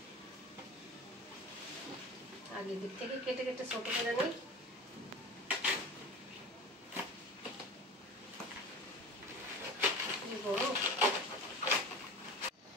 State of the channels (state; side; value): normal; both; correlation 0.34